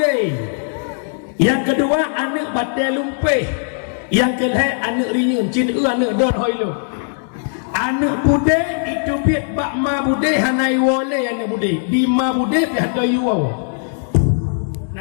Yang kedua anak batai lumpeh. Yang kelihatan anak rinyun cina anak don hoi lu anak bude itu biat bak ma bude hanai wole anak bude di ma bude pihak doyu wawo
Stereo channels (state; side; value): silent; right; digital silence